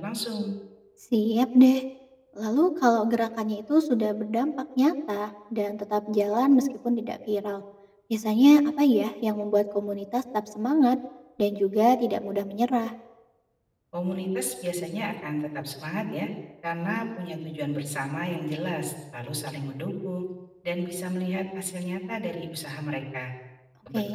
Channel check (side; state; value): both; identical; correlation 1.00